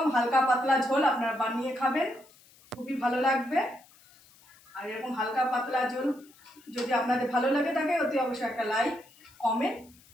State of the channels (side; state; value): left; noise; hiss, 27 dB below the sound